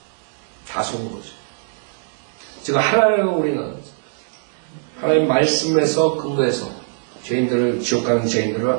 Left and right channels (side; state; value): left; silent; digital silence